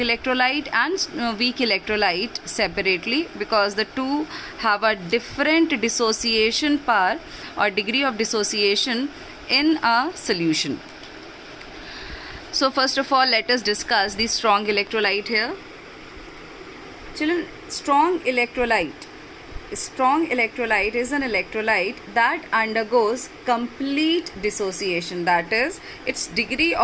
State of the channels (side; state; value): both; identical; correlation 1.00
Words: and weak electrolyte separately, because the two have a different dissociation power or degree of dissociation in a solution. So first of all, let us discuss the strong electrolyte here. Children, strong electrolyte is an electrolyte that undergoes complete dissociation, that is, its degree